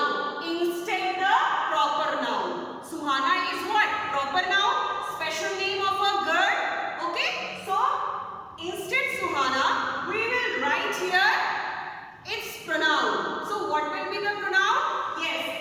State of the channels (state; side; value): identical; both; correlation 1.00